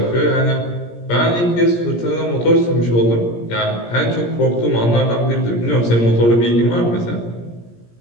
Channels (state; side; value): late; right; 17 ms